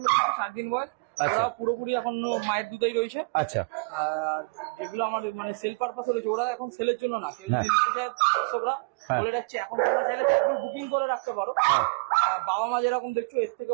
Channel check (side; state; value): left; quieter; 33.7 dB